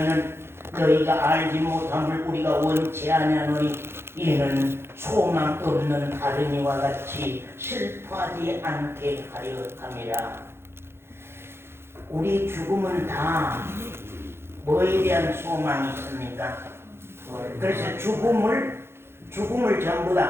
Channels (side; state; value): left; late; 0.12 ms